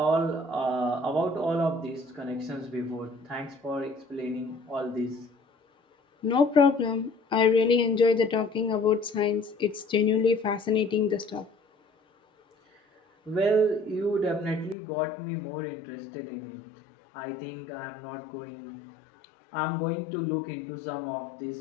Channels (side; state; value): right; drops out; at 14.8 s